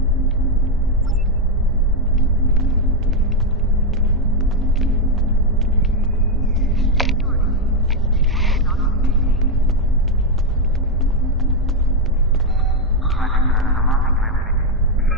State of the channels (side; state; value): both; normal; correlation 0.03